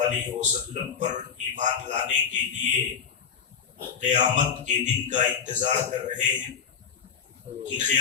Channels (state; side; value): quieter; right; 6.9 dB